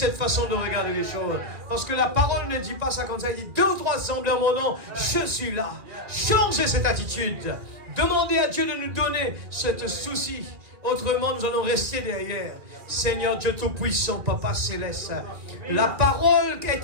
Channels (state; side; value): late; left; 2.4 ms